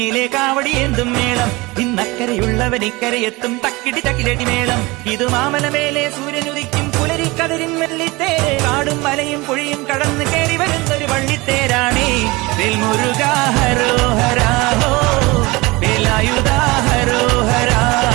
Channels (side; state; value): left; quieter; 23.1 dB